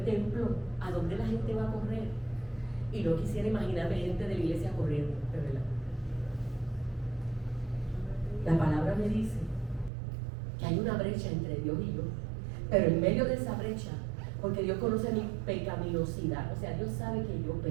templo. ¿A dónde la gente va a correr? Y no quisiera imaginarme gente de la iglesia corriendo, de verdad. La palabra me dice que hay una brecha entre Dios y yo, pero en medio de esa brecha, porque Dios conoce mi pecaminosidad, o sea, Dios sabe que yo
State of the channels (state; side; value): drops out; left; at 9.9 s